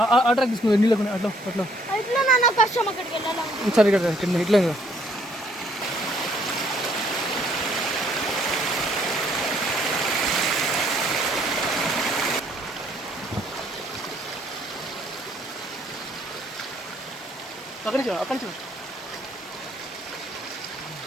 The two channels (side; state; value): both; normal; correlation 0.65